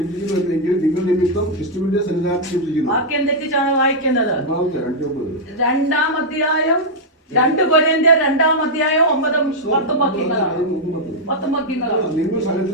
നിങ്ങൾ നിമിത്തം ക്രിസ്തുവിന്റെ സന്നിധാനത്തിൽ ക്ഷമിക്കുന്നു. വാക്യം തെറ്റിച്ചാണ് വായിക്കുന്നത്. 2-ാം അധ്യായം 2 കൊരിന്ത്യർ 2-ാം അധ്യായം 9-ഉം 10-ഉം വാക്യങ്ങളാണ്. നിങ്ങൾ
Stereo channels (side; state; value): both; normal; correlation -0.05